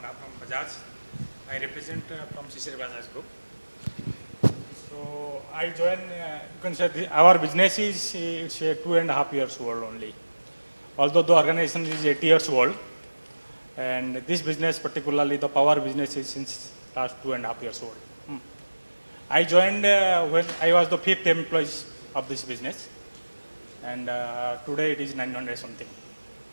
I joined, you can say our business is it's 2.5 years old only. Although the organization is 8 years old, and this business, particularly the power business, is since last 2.5 years old. I joined when I was the 5th employee of this business, and today it is 900 something.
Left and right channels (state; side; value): inverted; both; correlation -1.00